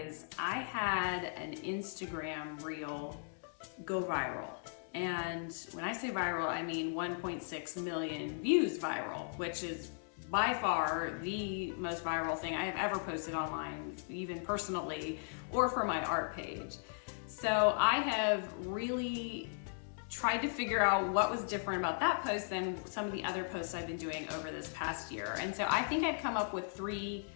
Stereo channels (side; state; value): right; silent; digital silence